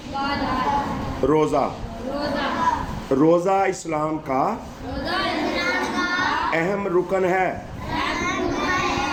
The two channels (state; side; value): identical; both; correlation 1.00